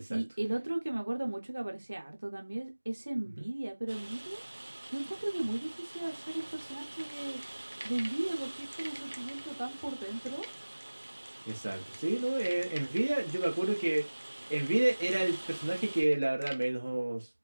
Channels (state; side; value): inverted; both; correlation -1.00